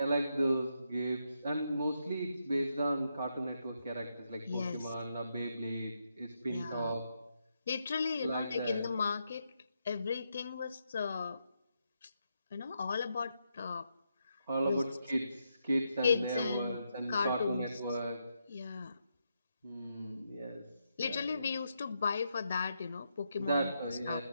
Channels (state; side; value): inverted; both; correlation -0.82